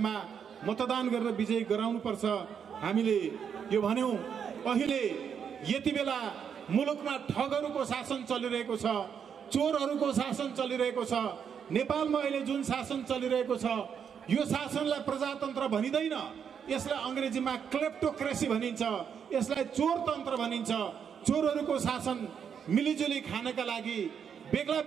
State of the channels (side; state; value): left; quieter; 7.5 dB